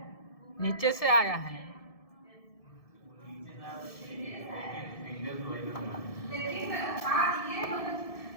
नीचे से आया है।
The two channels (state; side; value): late; right; 1.7 ms